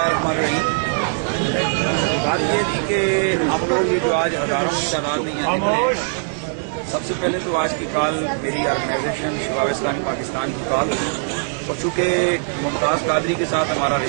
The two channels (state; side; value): silent; left; digital silence